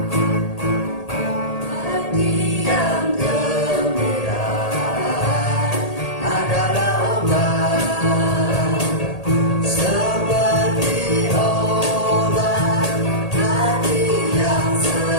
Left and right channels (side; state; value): right; late; 1.8 ms